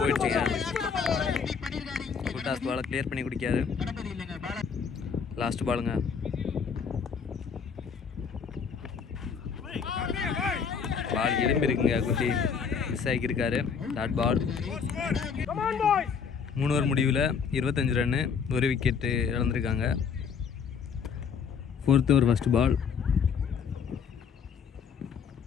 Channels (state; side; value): quieter; right; 6.3 dB